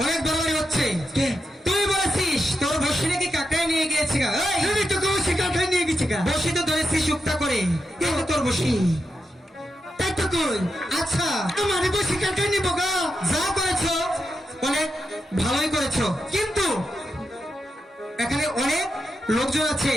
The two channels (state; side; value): normal; both; correlation 0.87